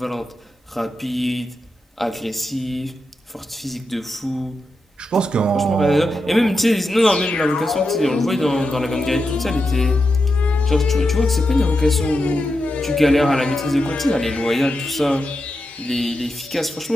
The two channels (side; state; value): both; normal; correlation 0.88